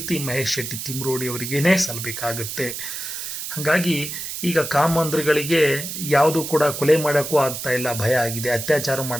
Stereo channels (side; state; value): right; noise; hiss, 6 dB below the sound